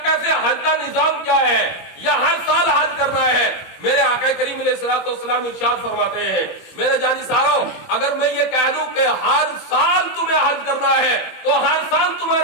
کیسے حج کا نظام کیا ہے، یا ہر سال حج کرنا ہے؟ میرے آقا کریم علیہ الصلوۃ والسلام ارشاد فرماتے ہیں میرے جانثاروں اگر میں یہ کہہ دوں کہ ہر سال تمہیں حج کرنا ہے تو ہر سال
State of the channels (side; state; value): right; late; 21 ms